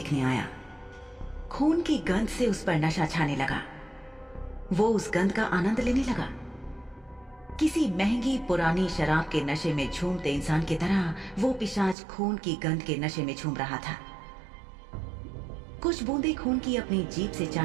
आया। खून की गंध से उस पर नशा छाने लगा। वो उस गंध का आनंद लेने लगा। किसी महंगी पुरानी शराब के नशे में झूमते इंसान की तरह वो पिशाच खून की गंध के नशे में झूम रहा था। कुछ बूंदे खून की अपनी जीभ से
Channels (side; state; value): left; drops out; at 12.0 s